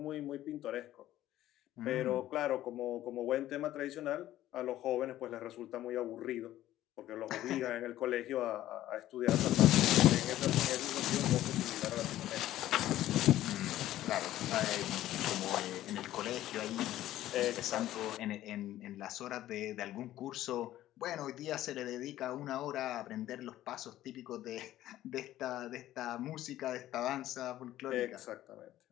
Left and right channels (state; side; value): quieter; right; 13.9 dB